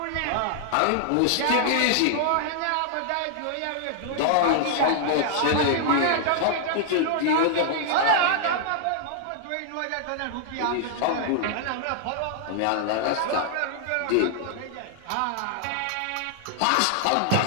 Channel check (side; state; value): both; different; correlation -0.01